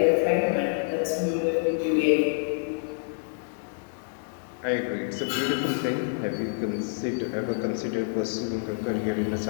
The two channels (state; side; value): silent; right; digital silence